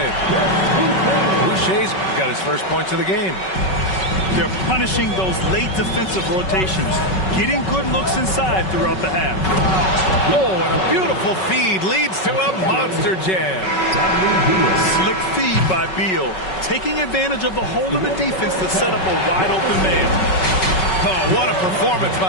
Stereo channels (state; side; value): late; right; 5.3 ms